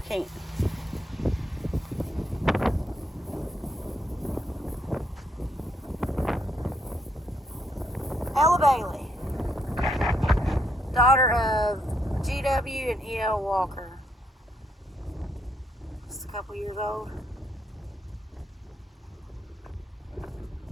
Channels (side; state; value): both; normal; correlation 0.75